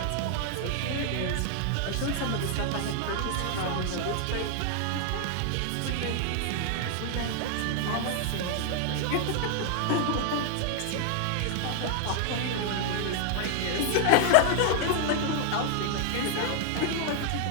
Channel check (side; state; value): both; different; correlation 0.00